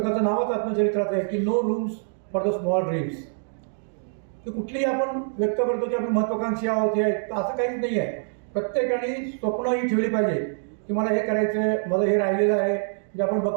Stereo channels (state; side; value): silent; left; digital silence